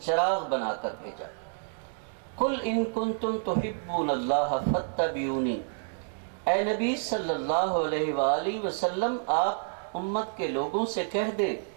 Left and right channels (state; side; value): silent; left; digital silence